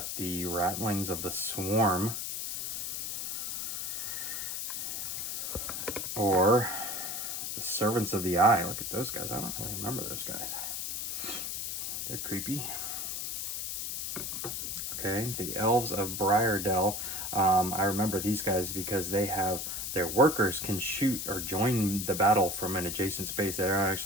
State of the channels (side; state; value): left; noise; hiss, 3 dB below the sound